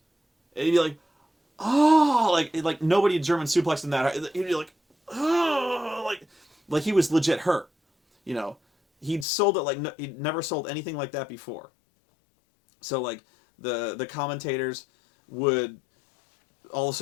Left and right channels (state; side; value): drops out; right; at 9.2 s